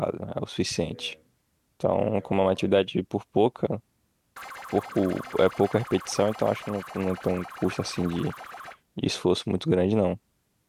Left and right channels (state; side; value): identical; both; correlation 1.00